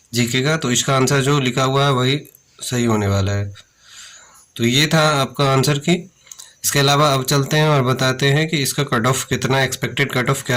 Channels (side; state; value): both; identical; correlation 1.00